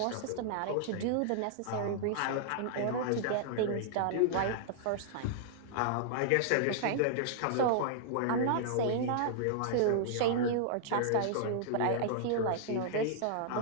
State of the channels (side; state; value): both; different; correlation -0.01